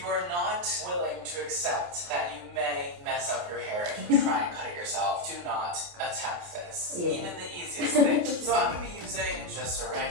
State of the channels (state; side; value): late; left; 28 ms